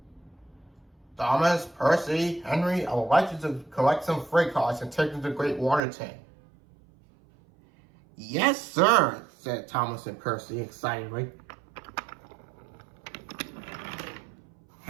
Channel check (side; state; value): left; drops out; at 5.8 s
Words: "Thomas, Percy, Henry, I would like you to collect some freight cars and take them to the Great Water Tank." "Yes, sir," said Thomas and Percy excitedly.